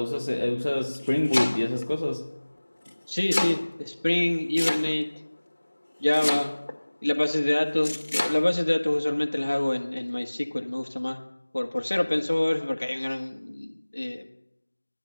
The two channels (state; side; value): inverted; both; correlation -1.00